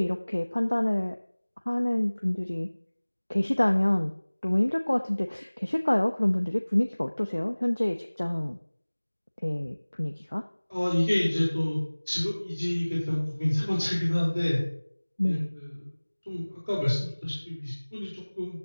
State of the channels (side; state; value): both; inverted; correlation -1.00